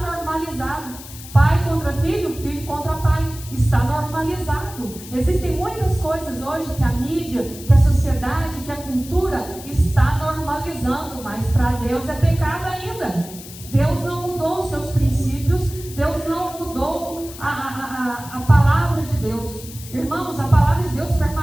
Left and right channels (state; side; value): noise; left; hiss, 15 dB below the sound